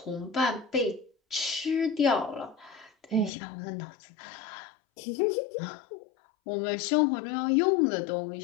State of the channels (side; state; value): right; drops out; at 3.3 s